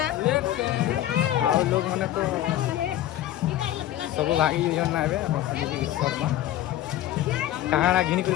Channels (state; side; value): quieter; right; 13.2 dB